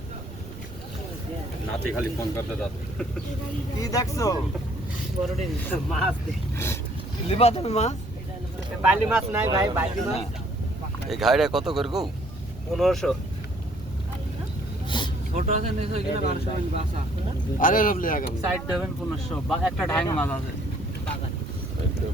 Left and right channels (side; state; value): right; noise; rumble, 17 dB below the sound